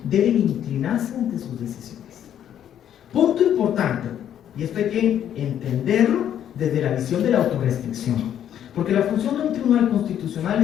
deben inclinarse ante sus decisiones. Punto importante, y esto hay que entenderlo desde la visión de la autorrestricción. Porque la función de un tribunal constitucional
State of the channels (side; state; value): right; quieter; 10.1 dB